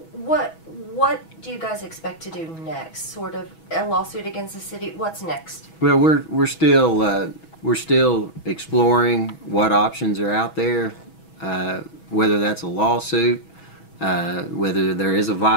what do you guys expect to do next? Sort of a lawsuit against the city? What's next? Well, we're still exploring what options are out there, whether that's a lawsuit, whether there is a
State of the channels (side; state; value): right; late; 6.2 ms